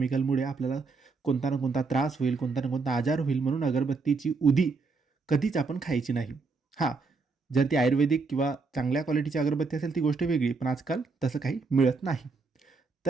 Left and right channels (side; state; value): left; quieter; 4.3 dB